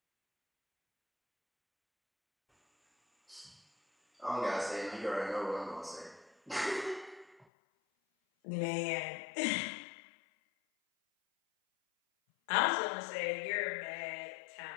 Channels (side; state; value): right; drops out; at 7.5 s